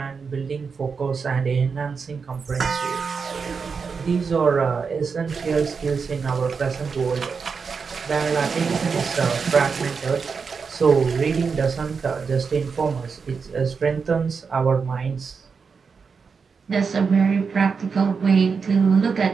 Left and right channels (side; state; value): left; quieter; 5.4 dB